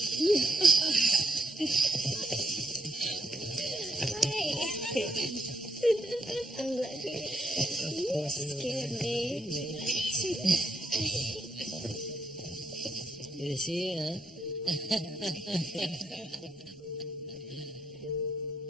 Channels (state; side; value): normal; both; correlation 0.78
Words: I'm glad you scared me. Good to see you, huh?